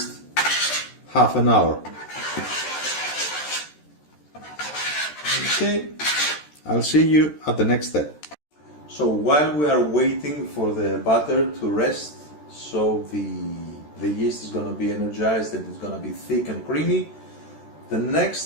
half an hour. Okay, I'll see you at the next step. So while we are waiting for the butter to rest, so the yeast is going to be energized and it's going to be thick and creamy, the next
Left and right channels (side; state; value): right; late; 13 ms